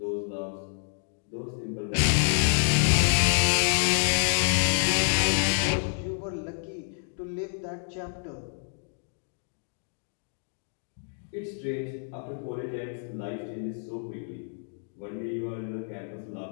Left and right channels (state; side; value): silent; right; digital silence